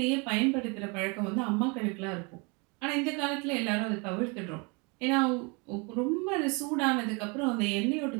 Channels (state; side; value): quieter; left; 30.6 dB